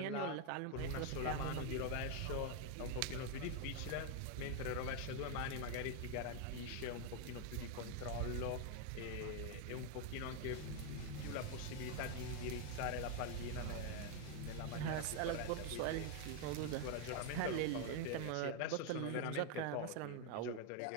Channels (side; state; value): both; different; correlation 0.01